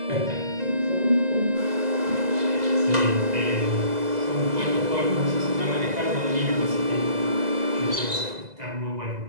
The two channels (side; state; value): left; late; 2.0 ms